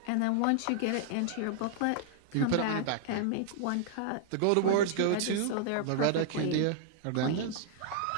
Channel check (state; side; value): different; both; correlation -0.01